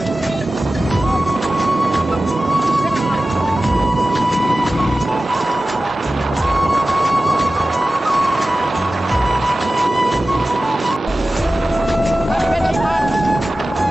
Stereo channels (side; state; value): both; normal; correlation 0.95